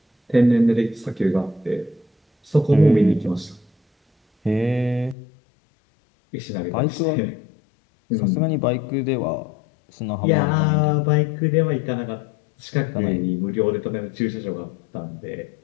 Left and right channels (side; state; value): right; drops out; at 5.2 s